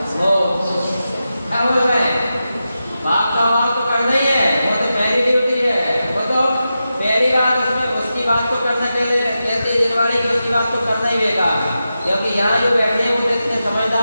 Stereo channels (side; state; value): both; inverted; correlation -0.91